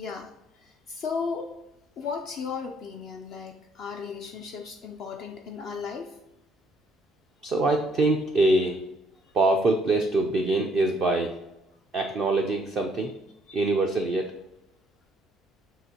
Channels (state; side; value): normal; both; correlation 0.67